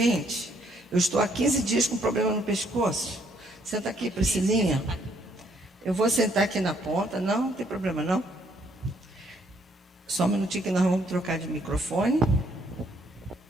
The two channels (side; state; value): both; normal; correlation 0.68